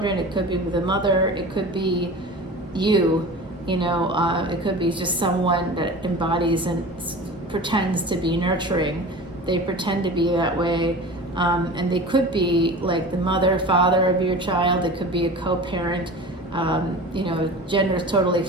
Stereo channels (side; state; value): both; normal; correlation 0.35